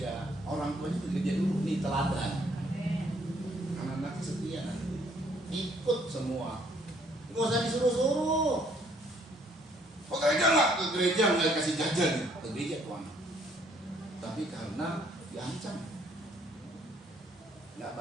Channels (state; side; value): normal; both; correlation 0.65